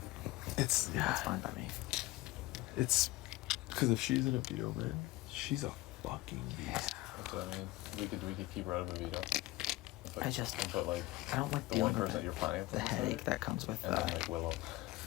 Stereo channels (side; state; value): right; quieter; 18.5 dB